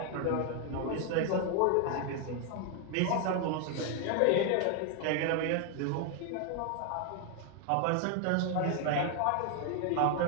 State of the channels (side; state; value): both; different; correlation 0.01